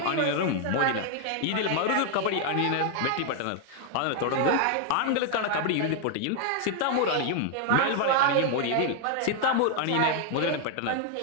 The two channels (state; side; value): different; both; correlation 0.00